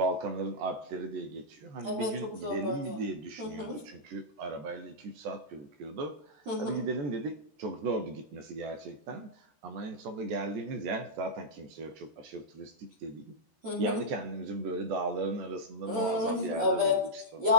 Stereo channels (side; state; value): left; late; 14 ms